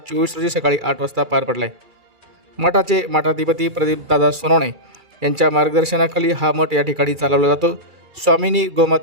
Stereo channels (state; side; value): late; left; 2.3 ms